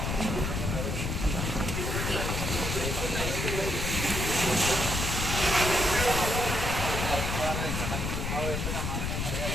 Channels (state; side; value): noise; left; rumble, 1 dB below the sound